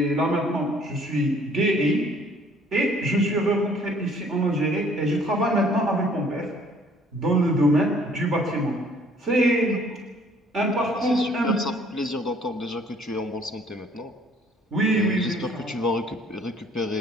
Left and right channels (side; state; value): both; normal; correlation 0.58